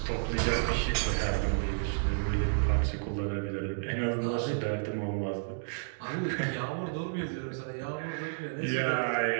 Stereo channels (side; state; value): left; silent; digital silence